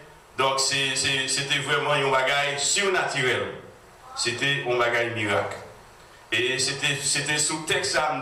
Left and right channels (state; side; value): identical; both; correlation 1.00